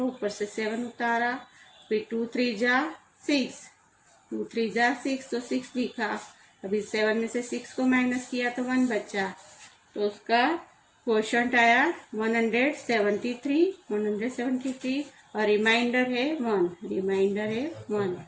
ऊपर से 7 उतारा। फिर 2 3 जा 6, 2 3 जा 6 तो 6 दिखा। अभी 7 में से 6 को माइनस किया तो 1 बचा। तो उसका क्वोशंट आया 173, 173, और रिमाइंडर है 1। रिमाइंडर है 1।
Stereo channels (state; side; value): identical; both; correlation 1.00